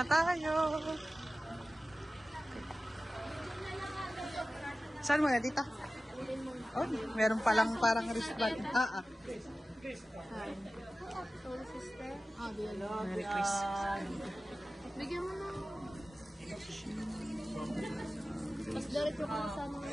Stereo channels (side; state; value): both; normal; correlation 0.96